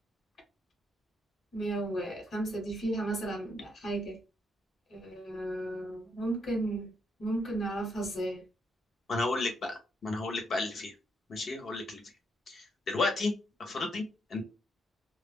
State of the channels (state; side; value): normal; both; correlation 0.76